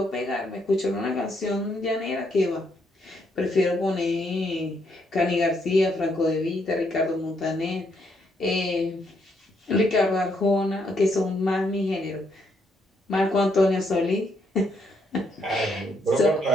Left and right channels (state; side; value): normal; both; correlation 0.74